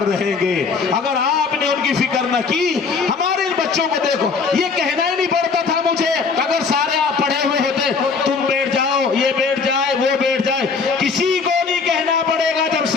رہیں گے۔ اگر آپ نے ان کی فکر نہ کی، ہمارے ان بچوں کو دیکھو، یہ کہنا ہی نہیں پڑتا تھا مجھے، اگر سارے آپ پڑھے ہوئے ہوتے، تم بیٹھ جاؤ، یہ بیٹھ جائے، وہ بیٹھ جائے، کسی کو نہیں کہنا پڑے گا۔ جب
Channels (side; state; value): right; quieter; 5.0 dB